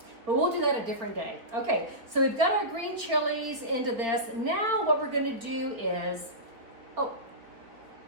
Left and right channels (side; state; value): left; late; 4.2 ms